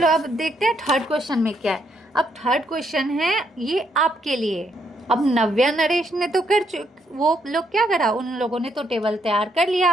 अब देखते हैं थर्ड क्वेश्चन में क्या है। अब थर्ड क्वेश्चन है ये आपके लिए। अब नव्या नरेश ने तो वो लोग क्या करा, उन लोगों ने तो टेबल तैयार कर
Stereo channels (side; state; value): both; normal; correlation 0.74